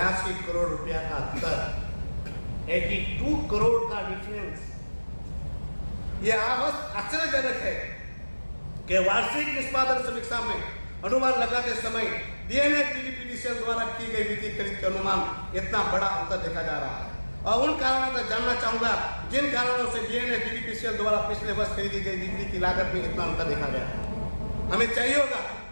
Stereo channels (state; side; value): inverted; both; correlation -1.00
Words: करोड़ रुपया का अंतर, 82 करोड़ का डिफरेंस। यह आश्चर्यजनक है कि वार्षिक निष्पादन समीक्षा में अनुमान लगाते समय DNA DDPDCL द्वारा की गई वित्तीय खरीद के अनुमान इतना बड़ा अंतर देखा जा रहा है। और उन कारणों का जानना चाहूँगा जिन कारणों से डीएनए डीडीपीसीएल द्वारा पिछले वर्ष खरीदी गई बिजली की लागत में इतना अंतर देखा गया है। हमें चाहिए होगा